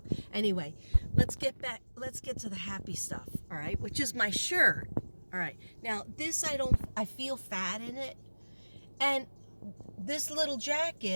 Anyway, let's get to the happy stuff, all right, which is my shirt. All right, now this, I feel fat in it, and this little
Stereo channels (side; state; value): both; inverted; correlation -1.00